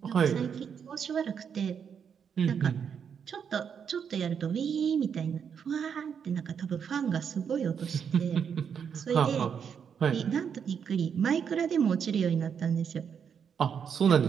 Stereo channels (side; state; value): left; quieter; 7.3 dB